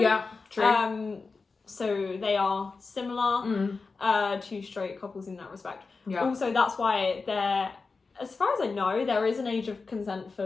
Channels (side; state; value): right; quieter; 4.3 dB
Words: true. So they are similar to straight couples in that respect. Yeah. Also, that's why there, as far as I know, there is an age of consent